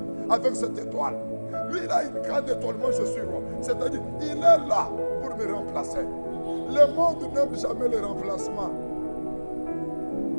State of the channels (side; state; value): both; inverted; correlation -1.00